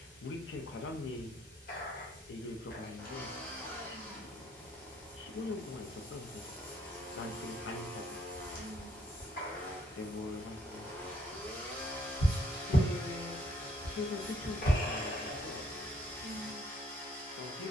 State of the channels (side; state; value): both; normal; correlation 0.68